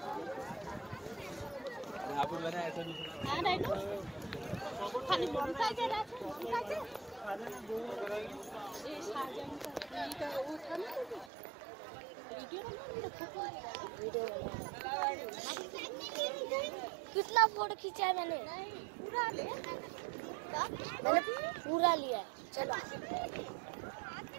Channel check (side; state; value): left; drops out; at 11.3 s